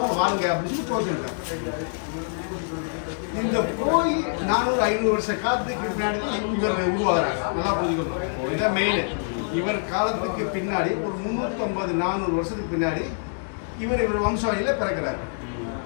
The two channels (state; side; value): silent; right; digital silence